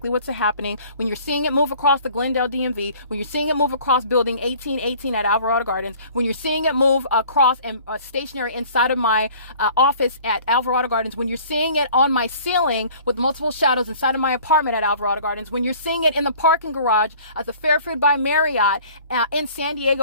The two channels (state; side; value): inverted; both; correlation -0.50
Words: what's happening. When you're seeing it move across the Glendale DMV, when you're seeing it move across building 1818 at Alvarado Gardens, when you're seeing it move across and stationary inside of my office at Alvarado Gardens, when you're seeing it on my ceiling with multiple shadows inside of my apartment at Alvarado Gardens, when you're seeing it in the parking garage at the Fairfield by Marriott in San